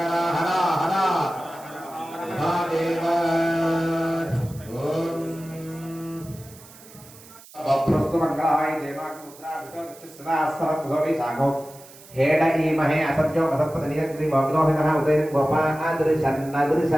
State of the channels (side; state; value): right; noise; hiss, 21 dB below the sound